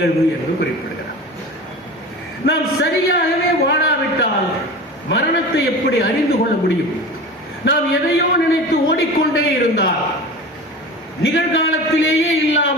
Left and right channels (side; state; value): both; normal; correlation 0.33